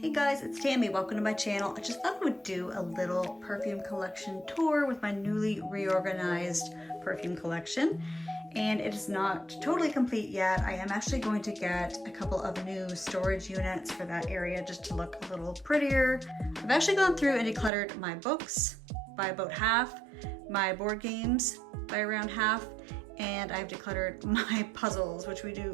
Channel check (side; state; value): left; drops out; at 17.7 s